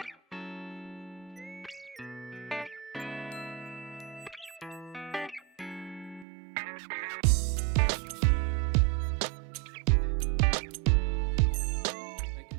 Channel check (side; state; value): left; drops out; at 6.2 s